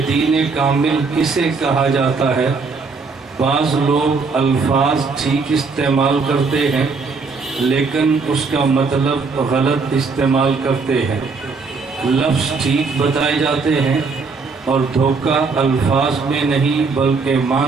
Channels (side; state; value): left; quieter; 4.5 dB